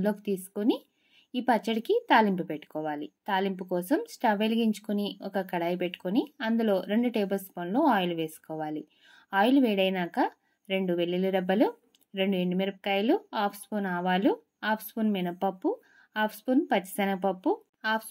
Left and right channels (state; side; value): identical; both; correlation 1.00